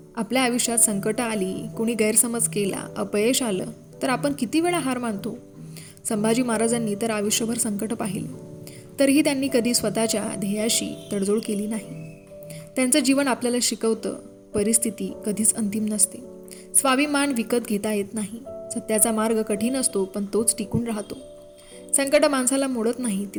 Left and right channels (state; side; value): identical; both; correlation 1.00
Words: आपल्या आयुष्यात संकट आली, कोणी गैरसमज केला, अपयश आलं तर आपण किती वेळा हार मानतो. संभाजी महाराजांनी तर आयुष्यभर संकट पाहिले, तरीही त्यांनी कधी स्वतःच्या ध्येयाशी तडजोड केली नाही. त्यांचं जीवन आपल्याला शिकवतं, परिस्थिती कधीच अंतिम नसते, स्वाभिमान विकत घेता येत नाही. सत्याचा मार्ग कठीण असतो पण तोच टिकून राहतो. संकट माणसाला मोडत नाही, ती